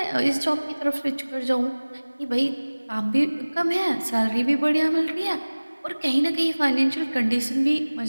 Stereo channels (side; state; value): both; inverted; correlation -1.00